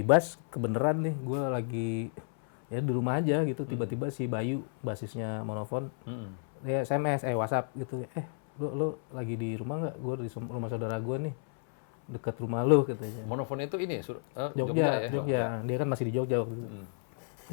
bass kebeneran nih gue lagi ya di rumah aja gitu. Tiba-tiba si Bayu basisnya Monofon. Dia SMS, WhatsApp gitu. Lu lagi di rumah nggak? Gue di rumah saudara gue nih, dekat rumah lu katanya. Monofon itu ini Jogja, ya? Jogja. Dia kan masih di Jogja waktu itu.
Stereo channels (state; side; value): silent; right; 57 dB below the other